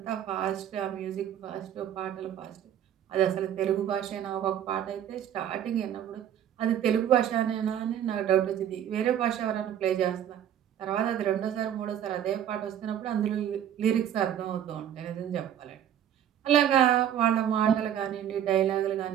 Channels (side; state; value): left; quieter; 10.2 dB